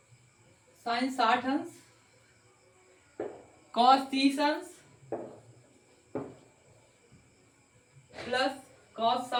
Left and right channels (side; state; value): both; identical; correlation 1.00